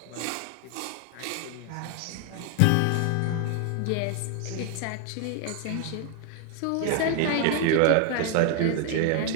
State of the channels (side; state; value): both; different; correlation 0.00